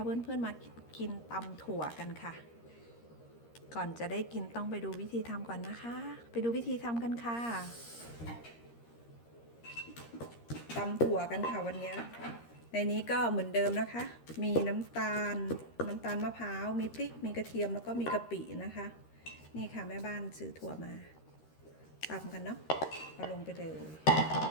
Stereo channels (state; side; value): late; right; 13 ms